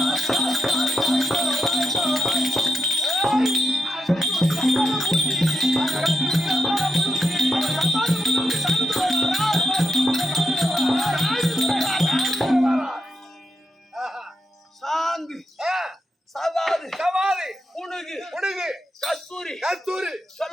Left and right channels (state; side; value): normal; both; correlation 0.85